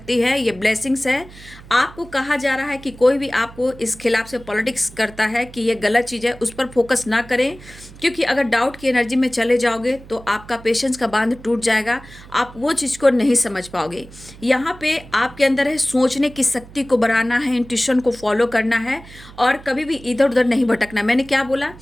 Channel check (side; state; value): right; noise; hum, 19 dB below the sound